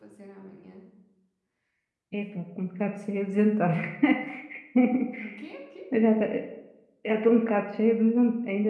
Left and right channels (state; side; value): identical; both; correlation 1.00